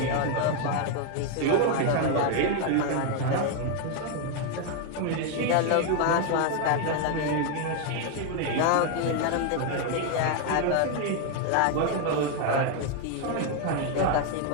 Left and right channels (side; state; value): both; different; correlation 0.01